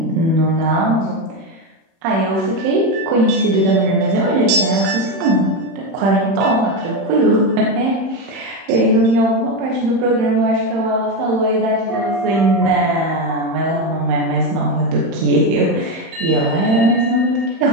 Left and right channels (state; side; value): late; left; 30 ms